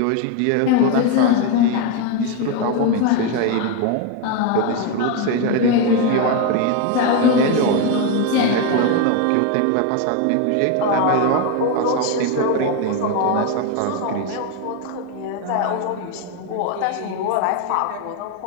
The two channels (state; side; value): different; both; correlation 0.02